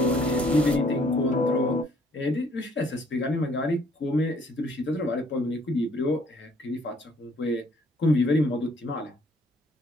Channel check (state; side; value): normal; both; correlation 0.63